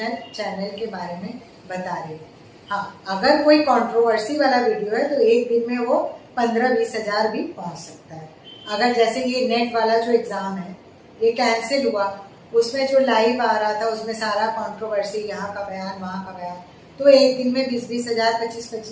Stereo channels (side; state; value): both; identical; correlation 1.00